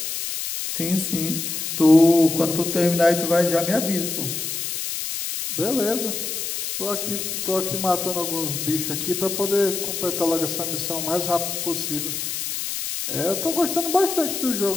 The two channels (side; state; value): left; noise; hiss, 4 dB below the sound